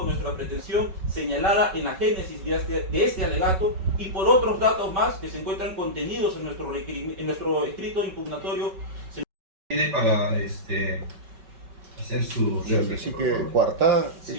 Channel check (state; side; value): late; left; 5.3 ms